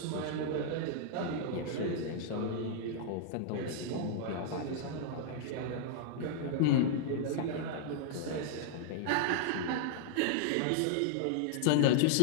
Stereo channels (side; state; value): both; different; correlation -0.01